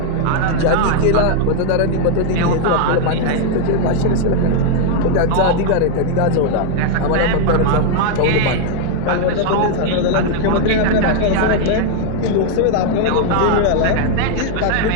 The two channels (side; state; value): both; different; correlation 0.00